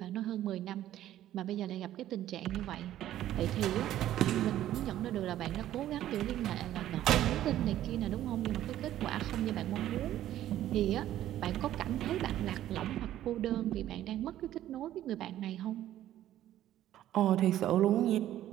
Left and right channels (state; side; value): quieter; left; 12.8 dB